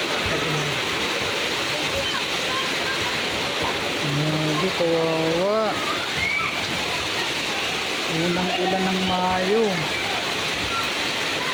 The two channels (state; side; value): identical; both; correlation 1.00